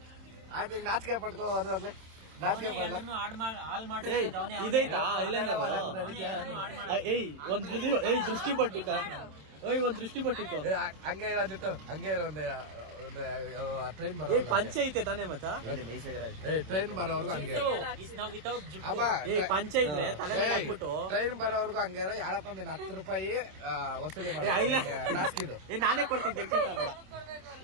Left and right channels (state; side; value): late; left; 27 ms